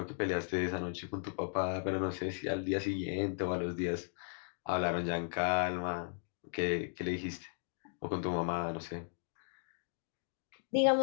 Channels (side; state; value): right; silent; digital silence